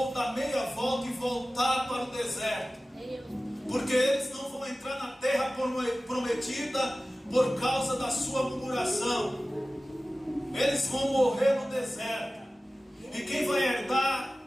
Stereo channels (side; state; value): both; normal; correlation 0.96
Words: dar meia volta e voltar para o deserto, porque eles não vão entrar na terra prometida por causa da sua murmuração. Eles vão morrer no deserto, e quem vai herdar